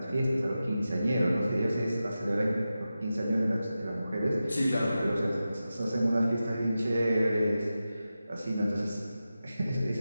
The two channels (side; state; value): both; inverted; correlation -0.92